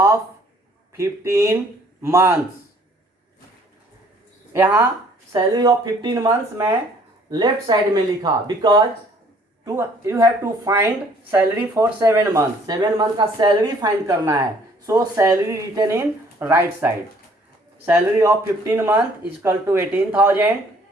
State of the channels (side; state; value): both; normal; correlation 0.59